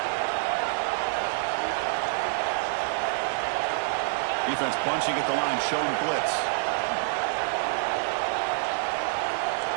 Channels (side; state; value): left; silent; digital silence